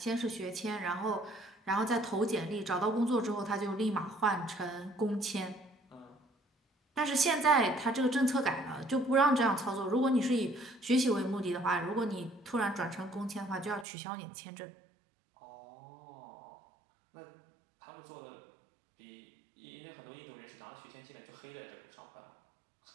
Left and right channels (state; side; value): drops out; left; at 13.9 s